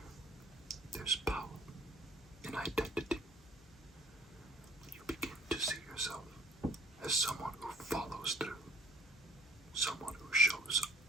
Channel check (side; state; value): both; normal; correlation 0.52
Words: There's power in identity. You begin to see yourself as someone who follows through, someone who shows